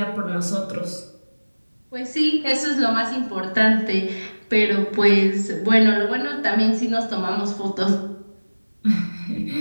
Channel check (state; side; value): inverted; both; correlation -1.00